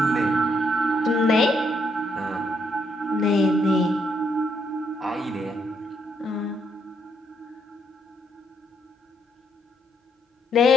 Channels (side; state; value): both; normal; correlation 0.75